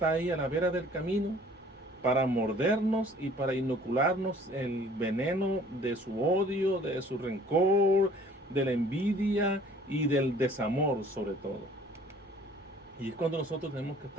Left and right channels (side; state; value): both; normal; correlation 0.54